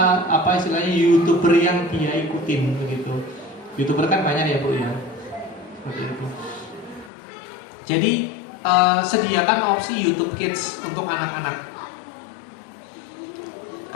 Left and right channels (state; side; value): drops out; right; at 7.1 s